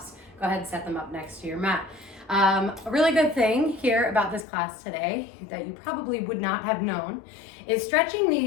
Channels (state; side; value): drops out; right; at 4.5 s